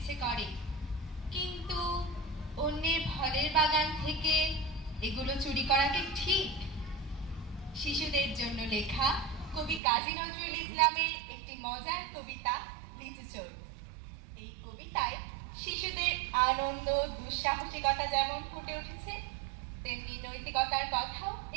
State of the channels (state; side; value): drops out; left; at 9.8 s